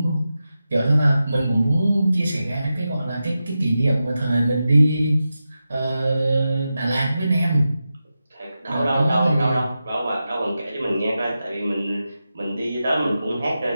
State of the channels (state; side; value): inverted; both; correlation -0.91